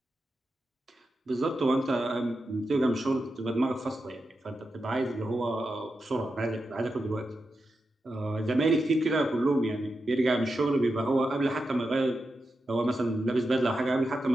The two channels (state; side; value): normal; both; correlation 0.89